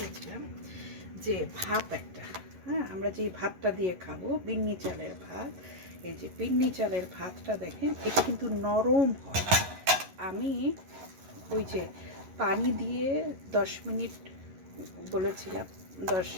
যে ভাত একটা, হ্যাঁ, আমরা যে ভাতটা দিয়ে খাবো বিন্নি চালের ভাত। এই যে বিন্নি চালের ভাতটা দেখেন, এটা কিন্তু নরম হয়। আমি ওই যে পানি দিয়ে 10 মিনিট বলেছিলাম, 10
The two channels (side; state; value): left; late; 11 ms